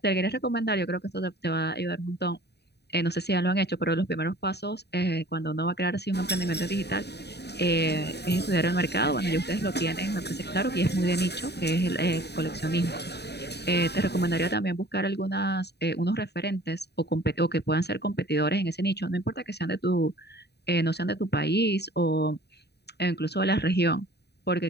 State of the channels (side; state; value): right; late; 0.48 ms